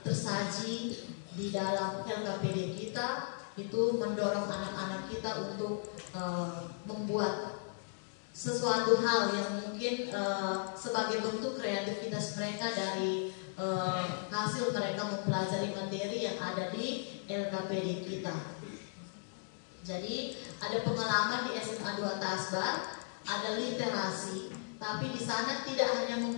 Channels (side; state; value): right; silent; digital silence